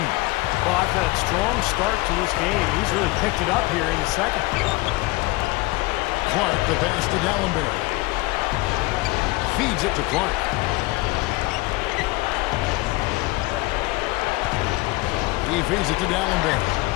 after that strong start to this game, he's really picked it up here in the second. Clark, the pass to Dallenberg. Feeds it to Clark. He feeds it to Dallenberg.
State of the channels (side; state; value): right; quieter; 21.9 dB